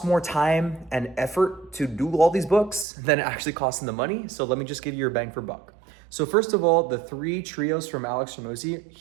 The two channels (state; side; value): drops out; left; at 2.9 s